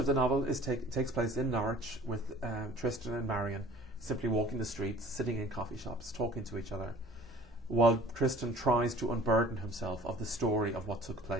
the novel takes place in Norwich, with Tristan and Marion simply walking the streets, sitting in coffee shops, talking to each other, while Tristan tries to unburden himself of the story of what took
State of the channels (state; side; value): normal; both; correlation 0.47